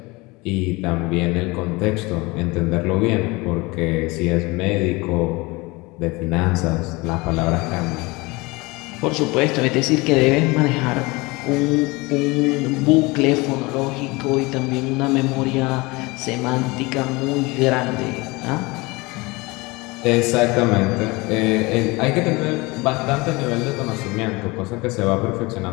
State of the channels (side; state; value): right; quieter; 24.1 dB